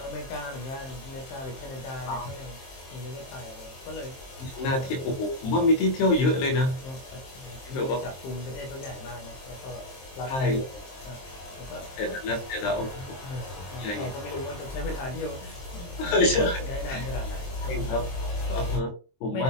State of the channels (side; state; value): right; late; 23 ms